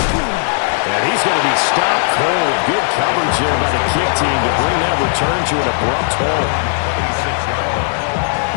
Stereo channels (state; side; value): silent; right; digital silence